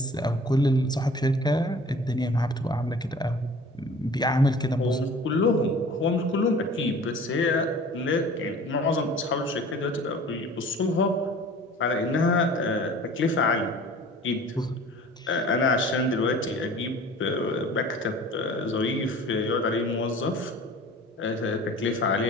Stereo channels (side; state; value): both; normal; correlation 0.45